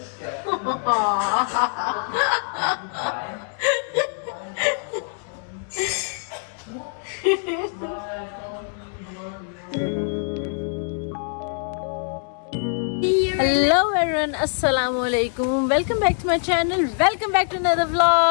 everyone, assalamu alaikum. Welcome back to my channel. Welcome back to another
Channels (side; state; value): right; silent; 57 dB below the other